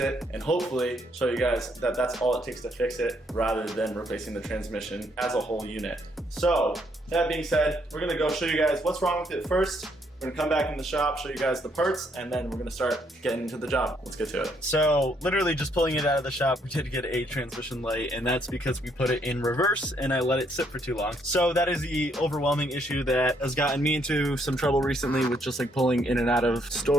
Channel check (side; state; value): both; normal; correlation 0.71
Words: and hopefully show you guys that that's all it takes to fix it rather than replacing the transmission as a whole unit. So that being said, we're gonna go show you guys what's wrong with it first. We're gonna come back in the shop, show you guys the parts, and then we're gonna start getting into the job. Let's get to it. So literally just pulling it out of the shop, we did get a transmission light, and that's because we put it in reverse and I let it sit for too long. So that is the overwhelming issue that has gotten me into some trouble recently with just like pulling in and out of